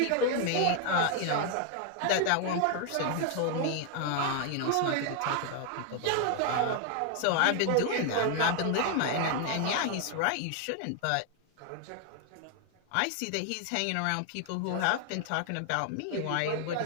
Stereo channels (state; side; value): different; both; correlation 0.00